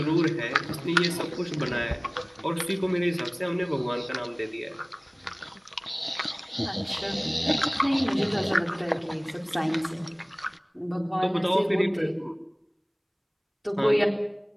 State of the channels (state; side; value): identical; both; correlation 1.00